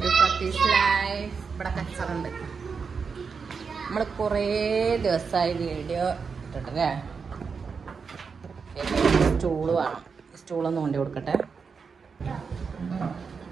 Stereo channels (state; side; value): quieter; left; 5.5 dB